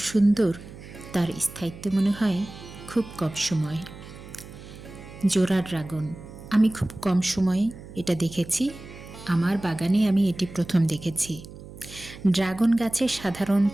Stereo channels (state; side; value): noise; right; hum, 16 dB below the sound